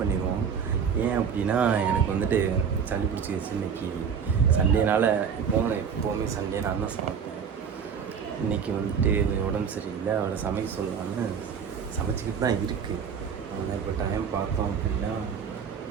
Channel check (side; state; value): left; quieter; 7.0 dB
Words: ஏன் அப்படின்னா, எனக்கு வந்துட்டு சளி பிடிச்சிக்கிச்சு. இன்றைக்கி சண்டேனால் எப்போவுமே சண்டே நான் தான் சமைப்பேன். இன்றைக்கி வந்துட்டு உடம்பு சரியில்லை, அவரை சமைக்க சொல்லலான்னு சமைச்சிக்கிட்டு தான் இருக்குது. ஆனால் இப்போ டைம் பார்த்தோம் அப்படின்னா